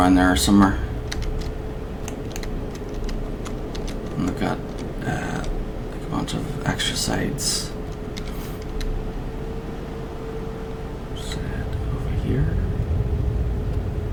there somewhere. And they've got like a bunch of extra sides. Set over here.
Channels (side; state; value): both; identical; correlation 1.00